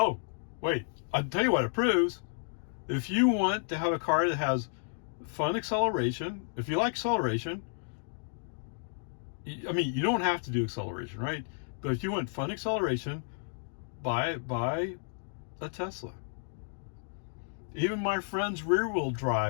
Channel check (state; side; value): silent; right; digital silence